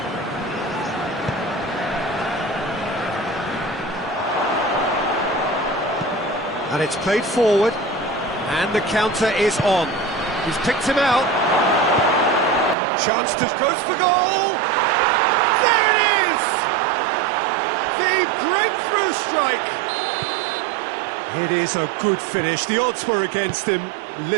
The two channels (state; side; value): drops out; left; at 12.8 s